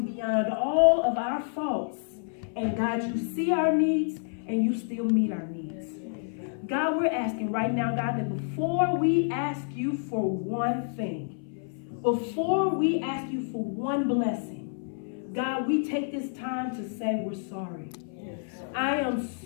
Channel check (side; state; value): right; silent; 57 dB below the other